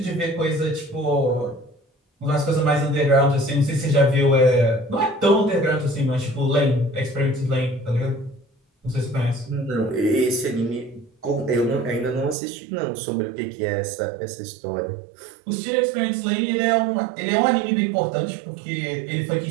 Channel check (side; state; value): left; drops out; at 12.4 s